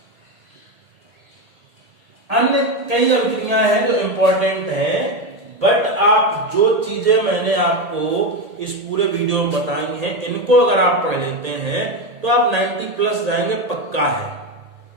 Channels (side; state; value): left; late; 1.8 ms